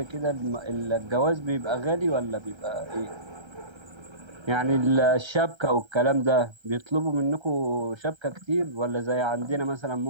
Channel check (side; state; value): left; late; 1.3 ms